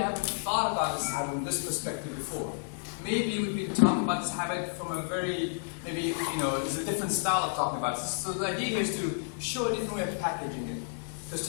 haven't thought about this habit from this perspective before. Maybe we've been talking about this habit from a very, maybe, there's a different style of talking about it. So the idea here is to show a different way of packaging it. Because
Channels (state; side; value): silent; right; digital silence